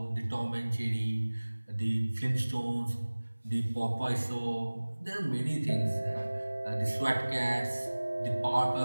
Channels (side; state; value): both; inverted; correlation -1.00